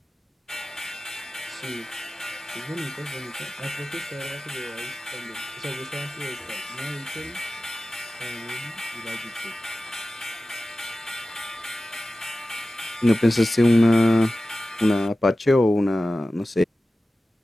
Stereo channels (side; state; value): both; normal; correlation 0.95